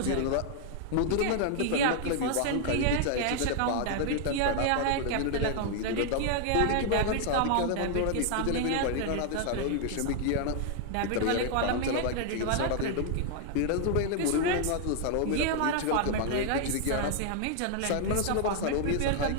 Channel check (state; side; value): different; both; correlation 0.00